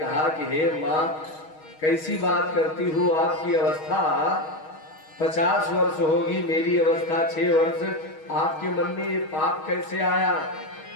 कि हे माँ, कैसी बात करती हूँ, आपकी अवस्था 50 वर्ष होगी, मेरी अवस्था 6 वर्ष, आपके मन में ये पाप कैसे आया?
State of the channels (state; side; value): late; right; 6.4 ms